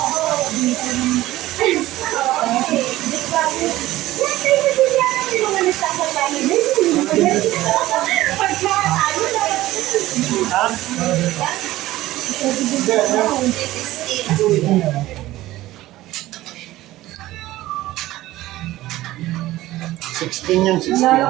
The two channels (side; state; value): left; quieter; 16.4 dB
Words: Sixteen yan, 16.